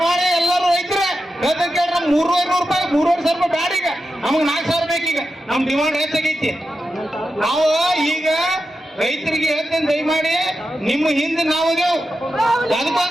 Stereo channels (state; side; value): normal; both; correlation 0.90